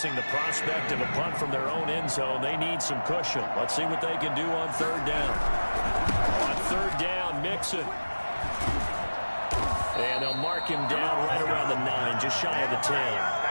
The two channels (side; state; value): both; inverted; correlation -1.00